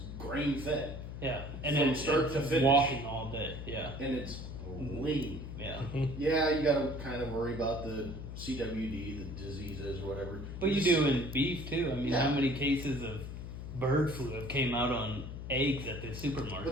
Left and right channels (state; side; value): noise; left; hum, 8 dB below the sound